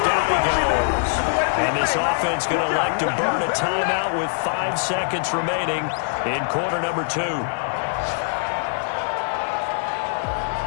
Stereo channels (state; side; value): silent; right; digital silence